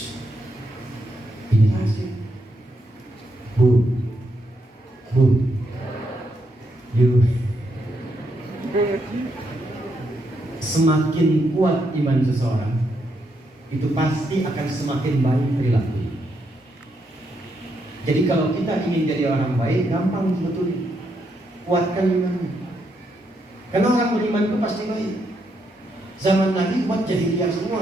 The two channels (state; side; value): normal; both; correlation 0.79